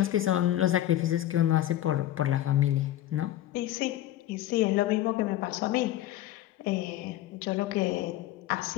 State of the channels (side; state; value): right; quieter; 13.6 dB